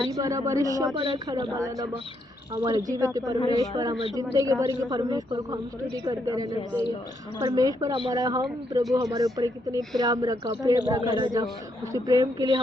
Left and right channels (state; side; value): normal; both; correlation 0.76